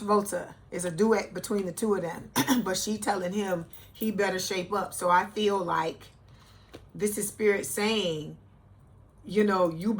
It's a duet between the two of them. But she telling him he better shape up. So I feel like this is Spirit saying, you know, you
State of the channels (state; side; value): identical; both; correlation 1.00